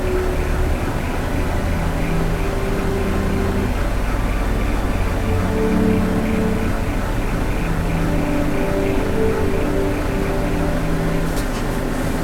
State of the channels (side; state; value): both; identical; correlation 1.00